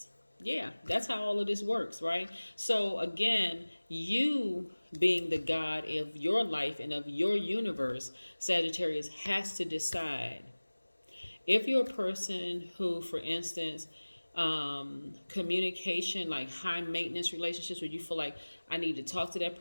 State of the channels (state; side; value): inverted; both; correlation -1.00